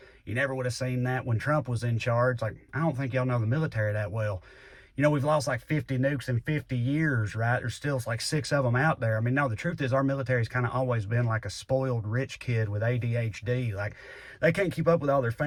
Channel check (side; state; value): both; identical; correlation 1.00